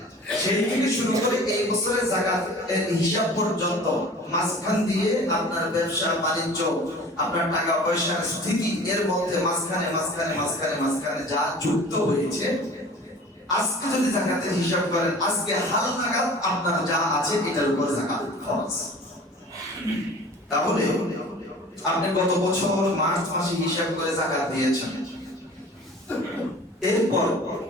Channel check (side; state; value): both; normal; correlation 0.44